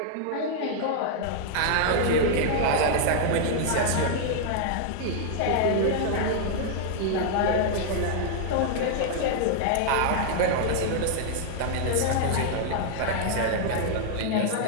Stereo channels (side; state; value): both; different; correlation -0.01